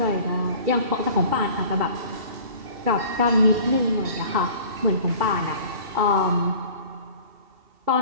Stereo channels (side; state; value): left; late; 2.7 ms